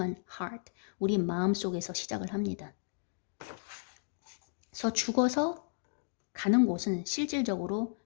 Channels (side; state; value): right; silent; digital silence